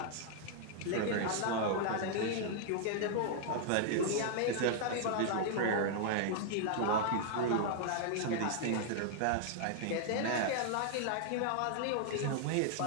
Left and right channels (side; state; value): both; different; correlation 0.00